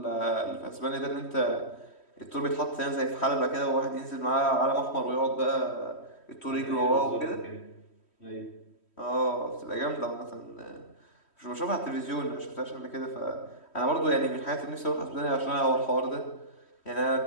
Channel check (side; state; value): right; late; 3.1 ms